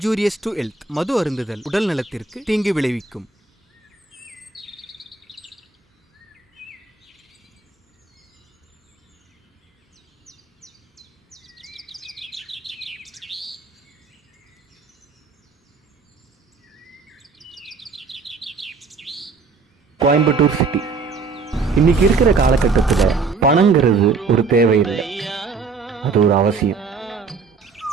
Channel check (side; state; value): left; quieter; 4.5 dB